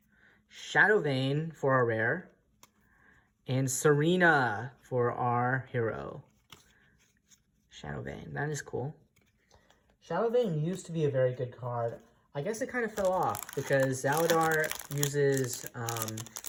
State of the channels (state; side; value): identical; both; correlation 1.00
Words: Shadow Vein for our rare, and Serena for our hero. Shadow Vein, that is cool. Shadow Vein used to be a very good card. I guess it kind of fell off because Zaladar uses,